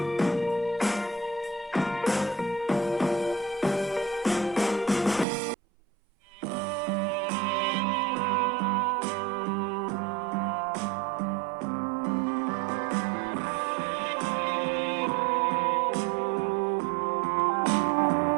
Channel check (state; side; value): drops out; left; at 5.2 s